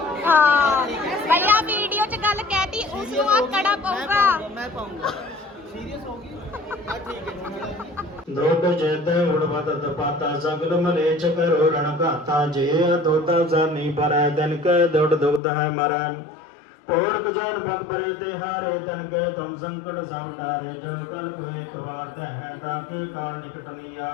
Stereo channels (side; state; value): right; drops out; at 15.4 s